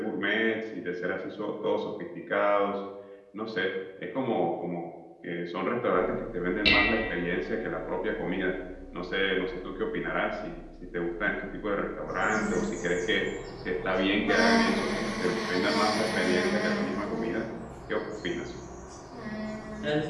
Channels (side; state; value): both; identical; correlation 1.00